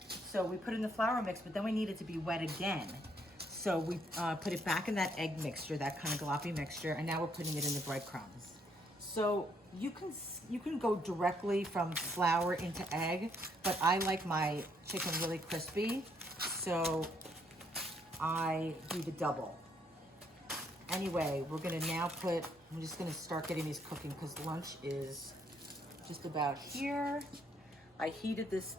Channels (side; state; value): both; normal; correlation 0.70